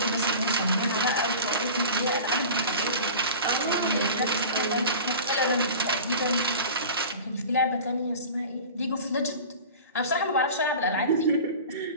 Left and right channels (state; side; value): inverted; both; correlation -0.36